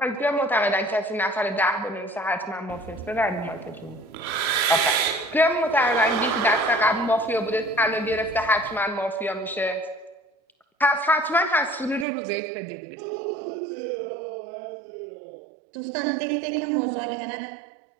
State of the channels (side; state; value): left; drops out; at 12.1 s